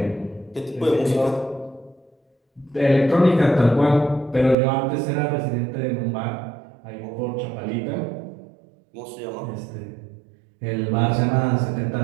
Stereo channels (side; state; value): left; drops out; at 4.5 s